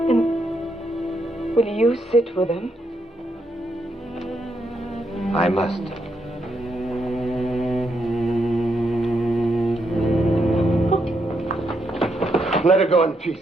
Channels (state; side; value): normal; both; correlation 0.79